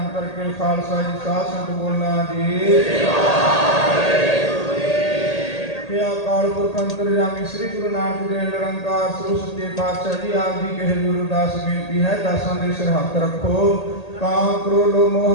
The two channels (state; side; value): late; right; 1.8 ms